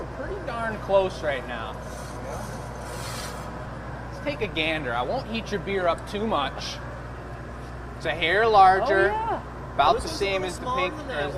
pretty darn close right now. Let's take a gander. I won't heat your beer up too much. It's a hair larger, Oh, yeah. about This the one's a same little as the smaller pink than or that as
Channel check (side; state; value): both; identical; correlation 1.00